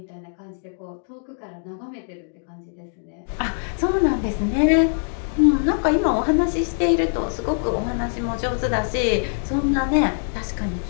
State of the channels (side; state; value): right; silent; digital silence